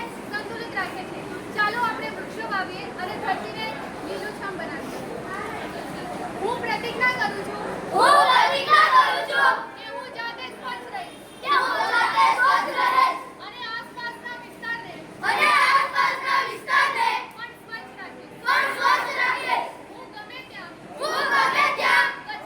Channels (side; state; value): both; identical; correlation 1.00